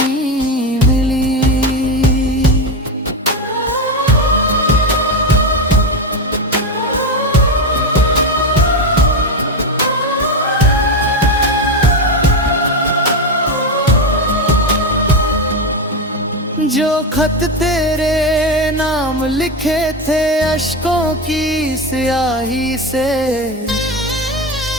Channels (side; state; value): both; normal; correlation 0.15